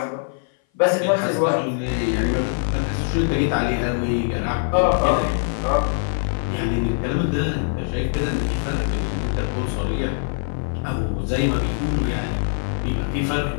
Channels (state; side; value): silent; right; 58 dB below the other